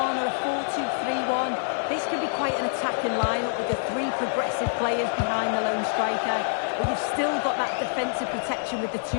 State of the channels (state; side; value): silent; right; 60 dB below the other